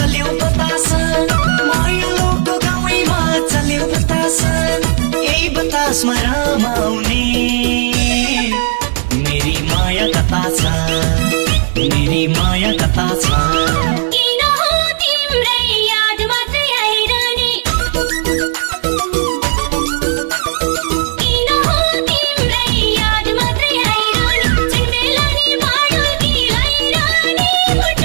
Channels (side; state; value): left; silent; 68 dB below the other